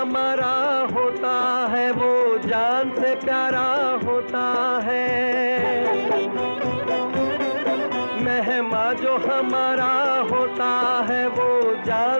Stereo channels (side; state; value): both; inverted; correlation -1.00